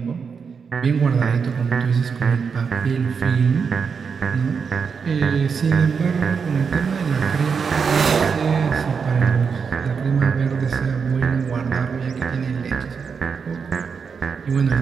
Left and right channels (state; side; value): quieter; left; 5.9 dB